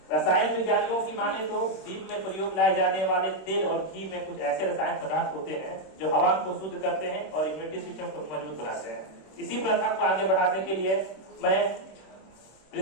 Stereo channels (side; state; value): right; late; 26 ms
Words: रसायन विज्ञानियों की माने तो दीप में प्रयोग लाए जाने वाले तेल और घी में कुछ ऐसे रसायन पदार्थ होते हैं जो हवा को शुद्ध करते हैं और इम्यूनिटी सिस्टम को मजबूत बनाते हैं। इसी प्रथा को आगे बढ़ाने के लिए मैं